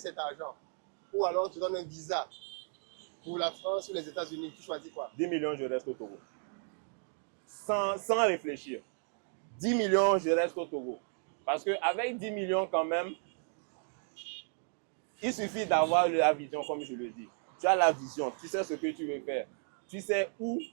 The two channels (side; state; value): left; silent; 55 dB below the other